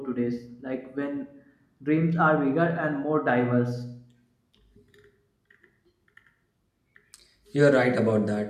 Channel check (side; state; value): both; identical; correlation 1.00